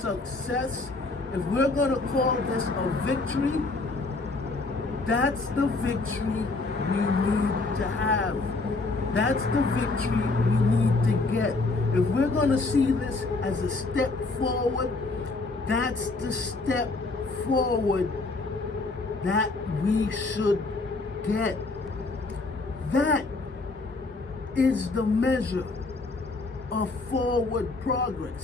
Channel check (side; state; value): right; quieter; 3.4 dB